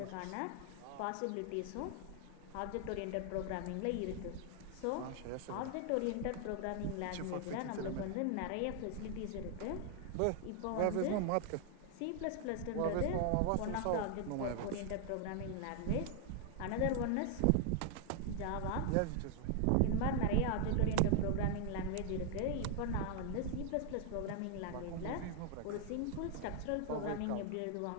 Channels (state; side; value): different; both; correlation 0.00